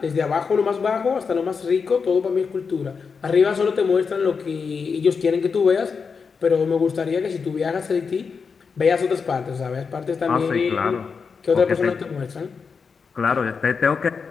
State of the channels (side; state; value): right; quieter; 5.5 dB